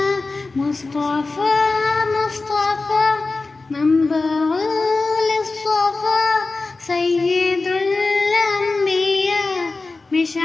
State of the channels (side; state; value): right; quieter; 3.6 dB